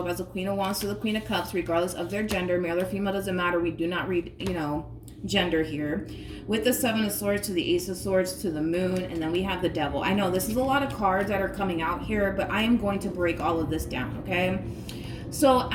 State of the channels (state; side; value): identical; both; correlation 1.00